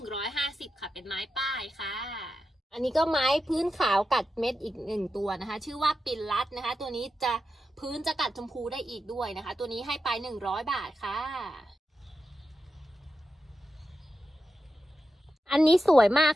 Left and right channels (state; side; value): normal; both; correlation 0.90